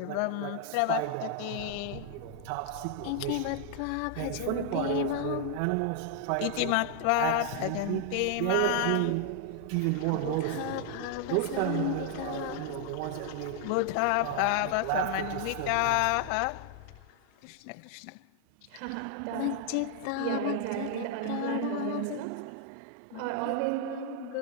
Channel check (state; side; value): different; both; correlation 0.00